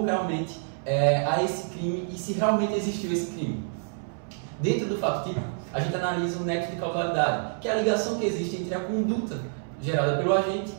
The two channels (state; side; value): silent; left; 60 dB below the other